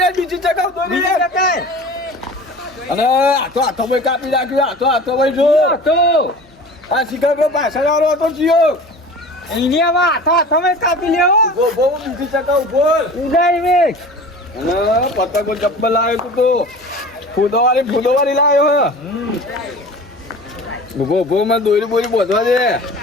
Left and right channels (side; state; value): both; normal; correlation 0.39